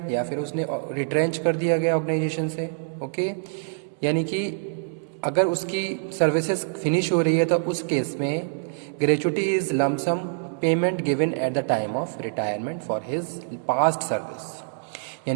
या फिर उसने रिट्रेंच कर दिया गया ऑर्गेनाइजेशन से. ओके, यानी कि अगर उसकी सर्विसेज फिनिश हो रही है तो उस केस में gratuity is lump sum payment given at the time of retirement for his past service.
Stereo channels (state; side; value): silent; left; 61 dB below the other